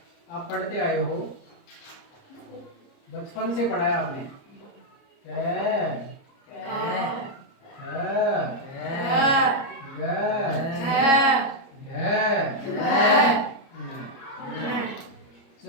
आप पढ़ते आए हो, बचपन से पढ़ा है आपने।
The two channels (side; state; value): right; late; 29 ms